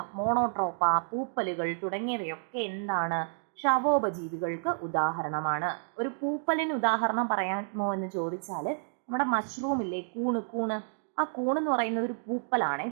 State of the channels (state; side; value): silent; left; digital silence